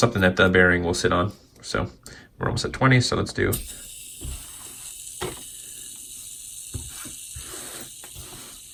that the bearing will sit on. So we're almost at 20, so let's do.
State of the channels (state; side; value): identical; both; correlation 1.00